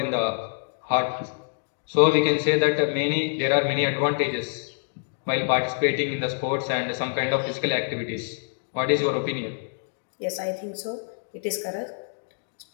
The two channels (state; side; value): silent; right; digital silence